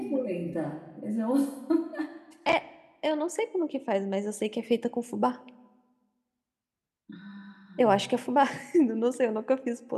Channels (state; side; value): identical; both; correlation 1.00